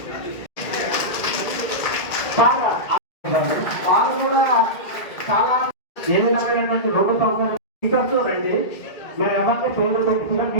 వాళ్ళు కూడా చాలా ఏ విధమైనటువంటి రోడ్డు సౌకర్యం రండి. మేము ఎవరికి పేరు పెట్టుకున్నా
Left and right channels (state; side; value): late; right; 1.9 ms